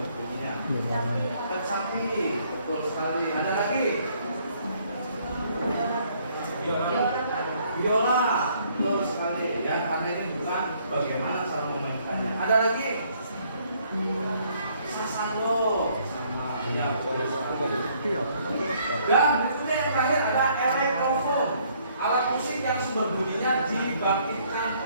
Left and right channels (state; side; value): inverted; both; correlation -0.65